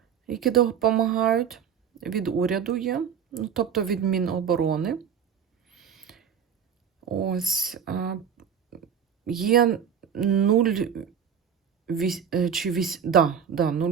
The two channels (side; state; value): left; quieter; 7.8 dB